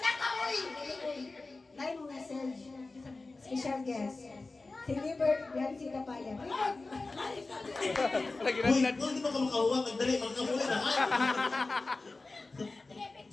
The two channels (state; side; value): quieter; right; 3.4 dB